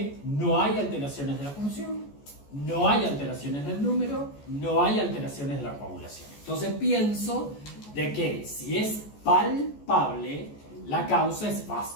no hay alteraciones de la función, no hay alteraciones del número, no hay alteraciones de la coagulación. Entonces pienso de que si es palpable, la causa es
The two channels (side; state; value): right; late; 14 ms